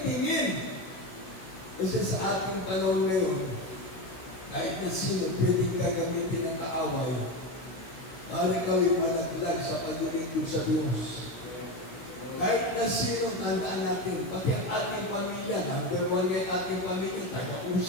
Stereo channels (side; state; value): right; late; 16 ms